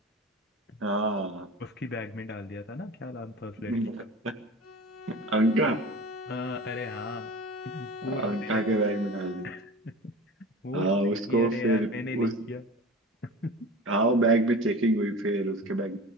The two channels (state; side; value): normal; both; correlation 0.35